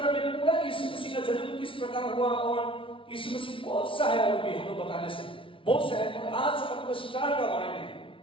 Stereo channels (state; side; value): late; right; 0.25 ms